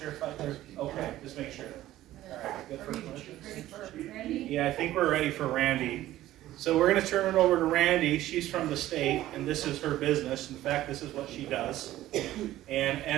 if I did. Okay, just make sure. All right, good for questions. Ready for Randy? Yeah, I think we're ready for Randy. So we're gonna turn it over to Randy. She's from the state, and this is her business. In fact, this is what she does. And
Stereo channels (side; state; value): left; quieter; 14.6 dB